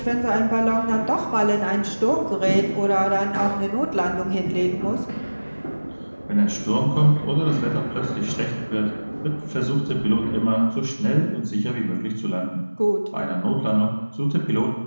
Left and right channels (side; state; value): both; inverted; correlation -1.00